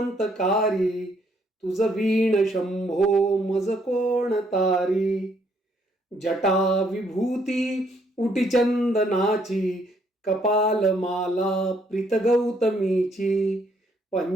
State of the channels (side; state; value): both; normal; correlation 0.69